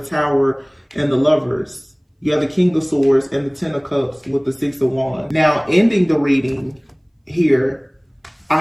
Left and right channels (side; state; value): both; identical; correlation 1.00